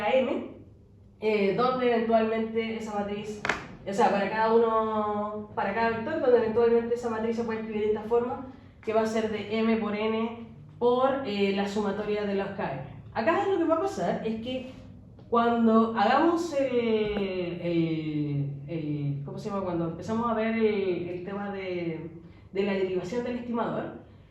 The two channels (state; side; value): identical; both; correlation 1.00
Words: donde eventualmente esa matriz, o sea, para cada vector, donde eventualmente esa matriz se puede escribir de esta forma, que va a ser de m por n por la sumatoria de los km. Acá lo que va a pasar es que cuando hagamos ¿cómo se llama? Cuando empezamos a ver el tema de la derivación del estimador,